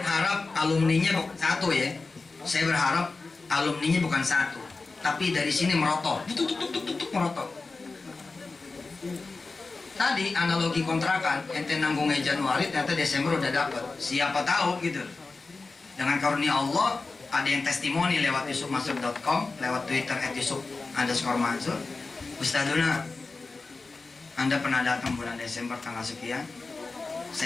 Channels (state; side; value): quieter; right; 3.8 dB